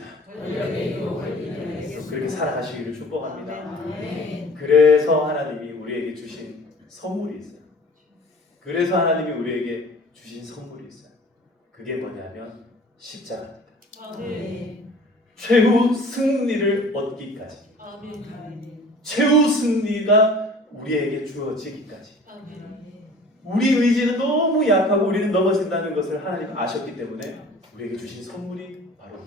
그렇게 살아가시기를 축복합니다. 그래서 하나님이 우리에게 주신 선물이 있어요. 그래서 하나님이 우리에게 주신 선물이 있어요. 그게 뭐냐면 십자가입니다. 최후 승리를 얻기까지, 최후 승리가 우리에게 주어지기까지. 우리 의지는 너무 약하고 우리는 넘어진다는 것을 하나님 아셨기 때문에 우리에게 주신 선물이 바로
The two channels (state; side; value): normal; both; correlation 0.47